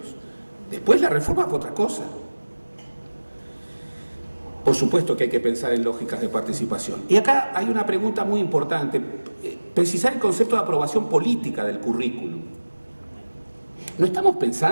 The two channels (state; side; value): inverted; both; correlation -1.00